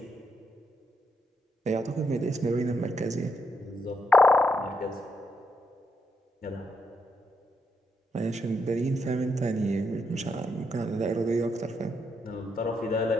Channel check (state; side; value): normal; both; correlation 0.79